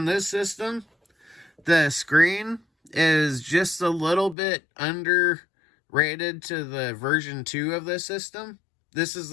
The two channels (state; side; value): drops out; right; at 4.4 s